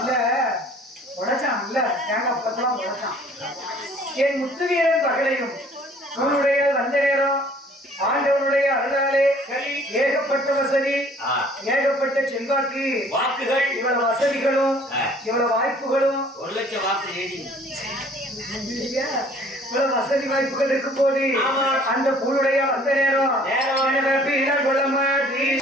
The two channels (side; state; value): both; normal; correlation 0.54